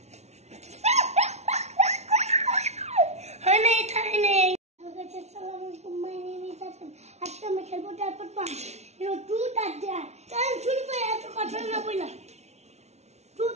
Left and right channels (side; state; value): left; late; 0.32 ms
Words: guys, assalamualaikum. My name is Hassan. আজকে আমি খেলবো তারপর পান। ট্রুথ আর ডেয়ার। চল শুরু করে এত কথা না বইলা।